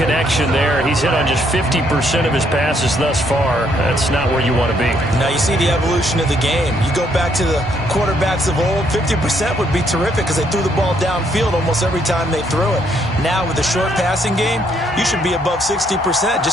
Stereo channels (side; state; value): both; normal; correlation 0.70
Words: there. He's hit on just 50% of his passes thus far. That's not where you want to be. Now you see the evolution of the game. You go back to the quarterbacks of old, 50% would be terrific because they threw the ball downfield almost every time they threw it. Now with the short passing game, you should be above 60%